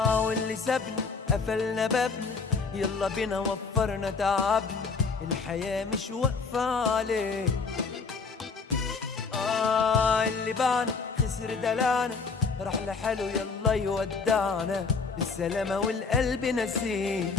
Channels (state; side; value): quieter; right; 4.7 dB